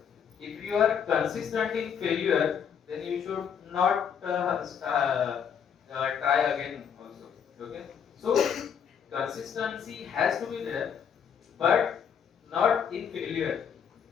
if you are consistent in failure, then you should not try again also. Okay. So consistency has to be there, but not in failure.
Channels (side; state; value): right; quieter; 7.6 dB